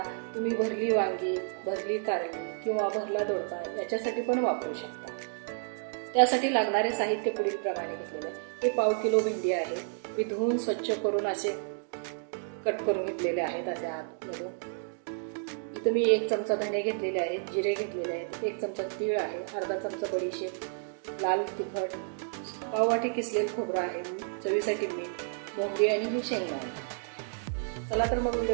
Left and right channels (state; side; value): silent; left; digital silence